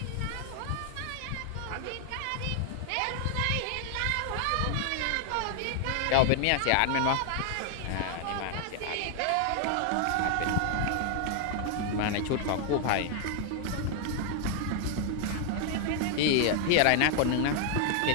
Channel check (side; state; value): both; different; correlation 0.00